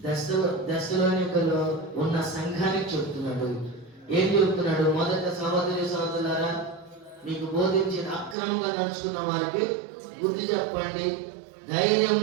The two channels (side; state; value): left; drops out; at 8.3 s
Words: దశలోనికలో ఉన్న సంఘానికి చెప్తున్నాడు. ఏం చెప్తున్నాడు? మొదట సహోదరి సహోదరులారా, మీకు బోధించిన అక్రమంగా నడుచుకున్న వారికి బుద్ధి చెప్పండి,